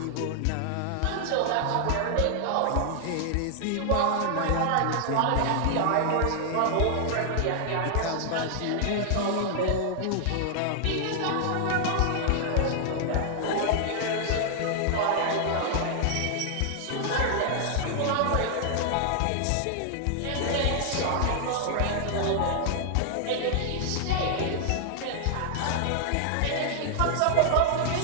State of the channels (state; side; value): different; both; correlation -0.01